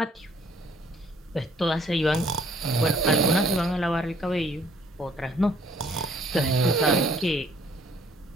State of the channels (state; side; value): normal; both; correlation 0.61